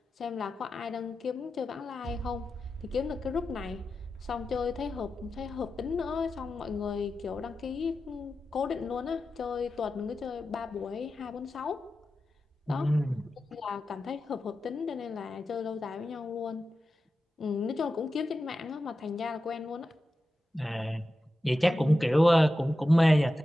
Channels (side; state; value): both; normal; correlation 0.92